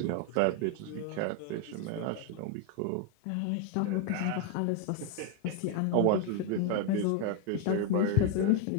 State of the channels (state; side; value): different; both; correlation 0.01